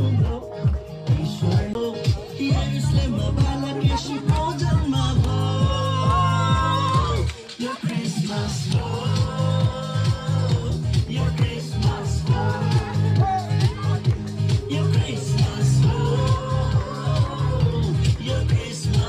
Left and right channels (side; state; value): both; identical; correlation 1.00